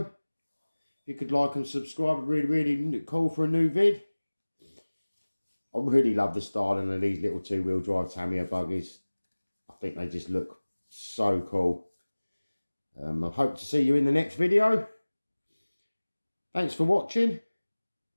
you could like and subscribe, I'd really cool for a new vid. I really love the styling of these little two-wheel drive Tamiya buggies. I think they just look so cool. I hope to see you in the next video. Thanks for watching.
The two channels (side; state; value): both; inverted; correlation -1.00